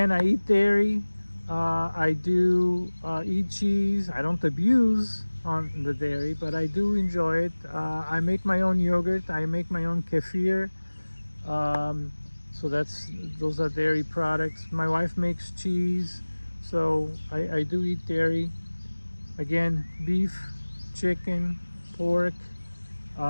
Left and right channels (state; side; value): inverted; both; correlation -1.00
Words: I eat dairy. I do eat cheese. I don't abuse on the dairy, but I do enjoy it. I make my own yogurt. I make my own kefir. So those are dairy products. My wife makes cheese, so I do eat dairy. Again, beef, chicken, pork,